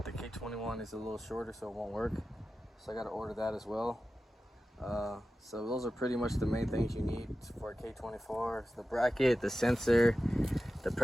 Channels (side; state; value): both; normal; correlation 0.93